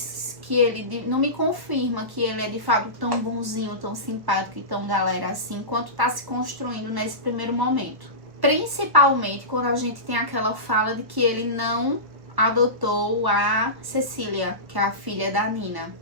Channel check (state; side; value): late; left; 1.1 ms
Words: que ele... Não me confirma que ele é de fato tão bonzinho, tão simpático e tão galera assim, quanto tá se construindo nesse primeiro momento. Principalmente quando a gente tem aquela fala de que ele não adotou a Cecília, que é a filha da Nina.